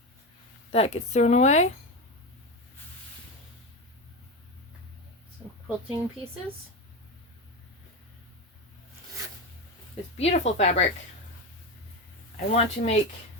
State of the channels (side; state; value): both; normal; correlation 0.17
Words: That gets thrown away. Some quilting pieces. This beautiful fabric. I want to make